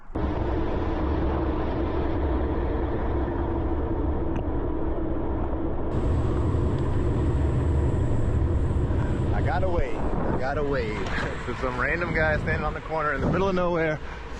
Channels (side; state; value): both; identical; correlation 1.00